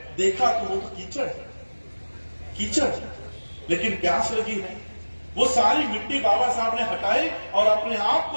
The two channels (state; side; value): inverted; both; correlation -1.00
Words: देखा कि वो तो कीचड़ है, कीचड़, लेकिन प्यास लगी है। वो सारी मिट्टी बाबा साहब ने हटाई और अपने आप